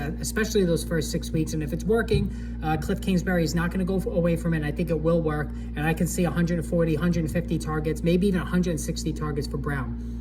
those first 6 weeks. And if it's working, Cliff Kingsbury is not going to go away from it. I think it will work, and I can see 140, 150 targets, maybe even 160 targets for Brown.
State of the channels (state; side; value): identical; both; correlation 1.00